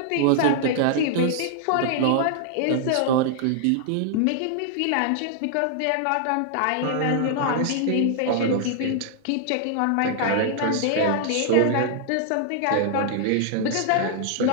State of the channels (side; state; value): both; different; correlation 0.00